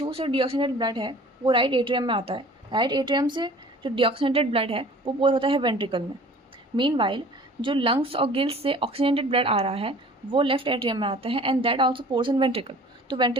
से डीऑक्सीनेटेड ब्लड है वो राइट एट्रियम में आता है. राइट एट्रियम से जो डीऑक्सीनेटेड ब्लड है वो पोर होता है वेंट्रिकल में. मीनवाइल जो लंग्स और गिल्स से ऑक्सीजनेटेड ब्लड आ रहा है वो लेफ्ट एट्रियम में आता है and that also pores in ventricle. तो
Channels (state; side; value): normal; both; correlation 0.47